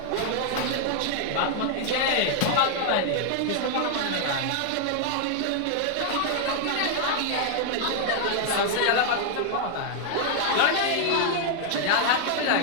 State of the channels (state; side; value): different; both; correlation 0.00